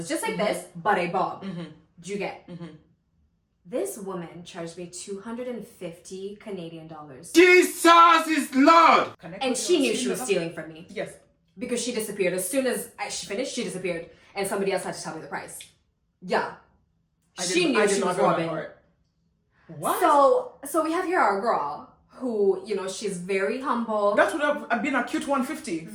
just like this, but a bob. Do you get? This woman charged me 250 Canadian dollars. Jesus is Lord! And she knew she was stealing from me. Yes. Because she disappeared. As soon as she finished, she disappeared. And somebody else had to tell me the price. Yeah. She knew she was robbing. What? So we have here our girl who, you know, she's very humble. That would have been a cute 150.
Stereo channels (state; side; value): identical; both; correlation 1.00